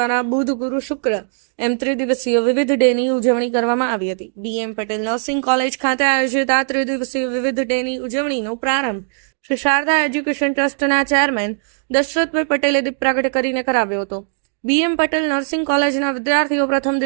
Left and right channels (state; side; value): silent; left; digital silence